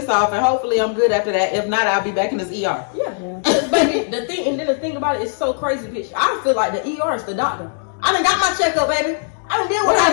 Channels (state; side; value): silent; right; digital silence